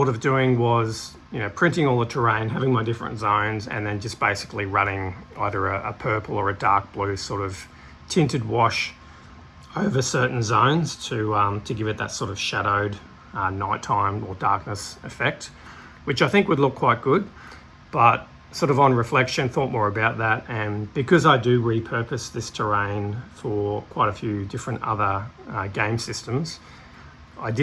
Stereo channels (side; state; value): both; identical; correlation 1.00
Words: of doing was printing all the terrain, having my different zones, and then just basically running either a purple or a dark blue sort of tinted wash over certain zones to give it that sort of shadowed nighttime or darkness effect. which I think would look quite good, but sort of on reflection, thought more about that. And because I do repurpose this terrain for quite a few different other game systems, I